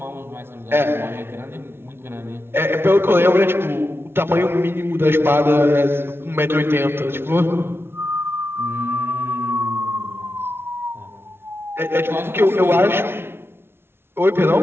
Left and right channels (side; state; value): left; late; 0.11 ms